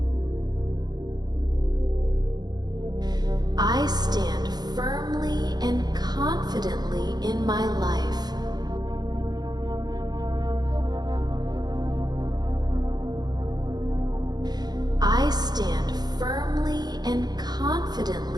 I stand firmly and confidently in my life. I stand firmly and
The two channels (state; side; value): late; left; 0.20 ms